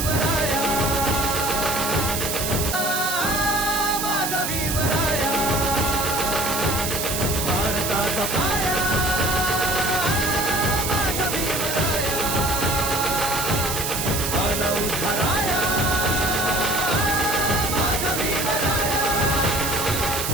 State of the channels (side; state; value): right; noise; hiss, 2 dB below the sound